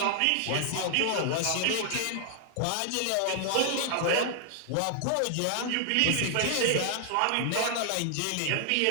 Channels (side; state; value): both; different; correlation 0.00